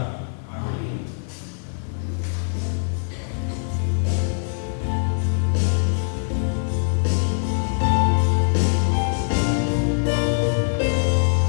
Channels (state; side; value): silent; right; 64 dB below the other